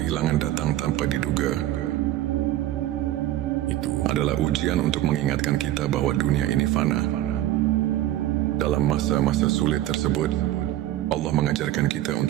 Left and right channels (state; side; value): quieter; left; 13.9 dB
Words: datang tanpa diduga, itu adalah ujian untuk mengingatkan kita bahwa dunia ini fana. Dalam masa-masa sulit tersebut, Allah mengajarkan kita